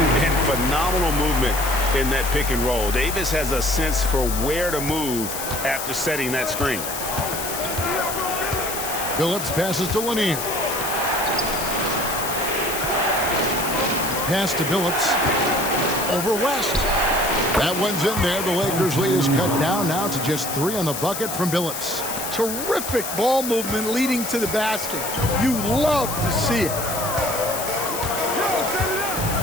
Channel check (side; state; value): left; noise; hiss, 6 dB below the sound